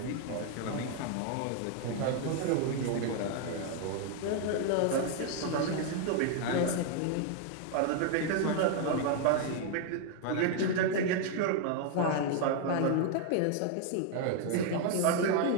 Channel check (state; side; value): different; both; correlation 0.00